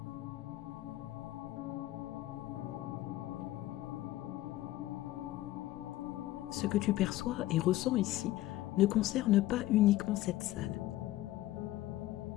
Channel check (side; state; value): right; quieter; 15.7 dB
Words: Ce que tu perçois et ressens ici ne concerne pas uniquement cette salle.